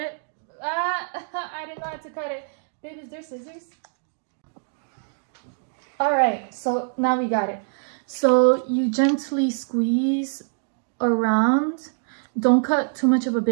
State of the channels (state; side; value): silent; left; digital silence